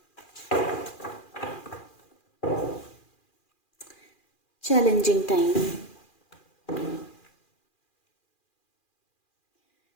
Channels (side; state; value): right; late; 2.4 ms